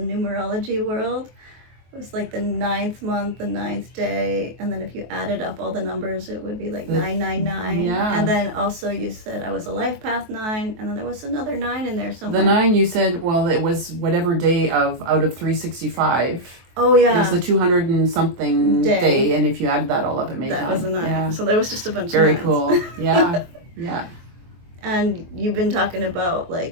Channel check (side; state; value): left; late; 23 ms